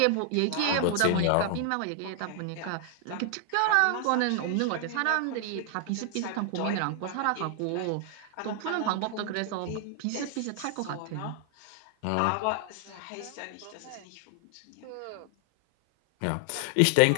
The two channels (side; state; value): both; different; correlation 0.00